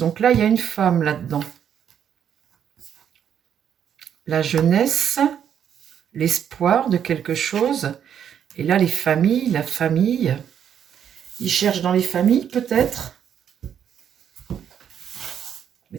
là, il y a une femme là-dedans. La jeunesse, l'espoir de quelque chose. Et là, les familles, la famille. Ils cherchent dans les familles, peut-être.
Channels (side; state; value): left; quieter; 8.9 dB